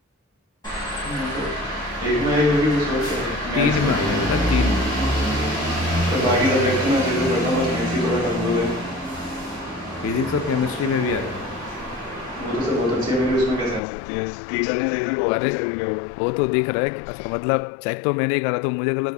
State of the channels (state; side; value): drops out; right; at 13.8 s